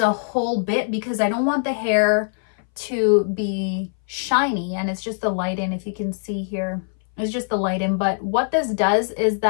whole bit because I don't want the hair to be shiny, and it's just the lighting. If you can see here, it's just the lighting. But what this does is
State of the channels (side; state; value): right; silent; 61 dB below the other